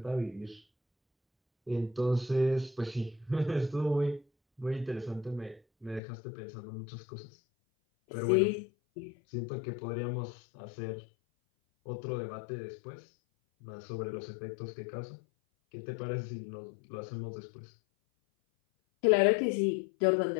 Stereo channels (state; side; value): drops out; right; at 6.0 s